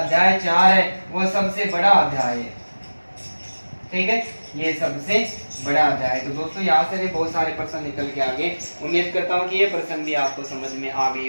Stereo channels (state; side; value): inverted; both; correlation -1.00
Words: 4 है वो सबसे बड़ा अध्याय है। ठीक है, ये सबसे बड़ा अध्याय। तो दोस्तों यहाँ से भी बहुत सारे प्रश्न निकल के आगे। उम्मीद करता हूँ कि ये प्रश्न भी आपको समझ में आ गए